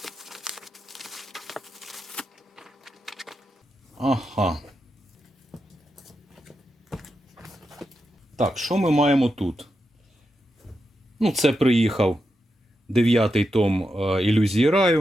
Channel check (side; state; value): both; normal; correlation 0.87